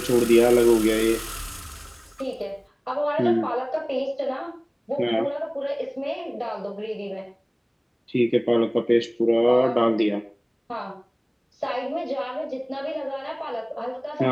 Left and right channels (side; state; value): both; identical; correlation 1.00